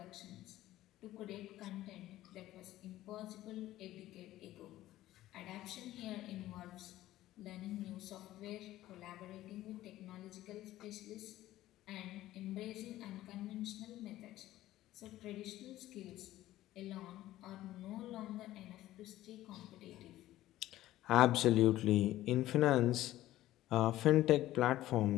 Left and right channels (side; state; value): right; quieter; 15.0 dB